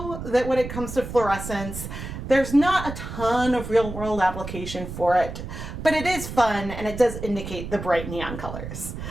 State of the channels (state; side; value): noise; right; rumble, 8 dB below the sound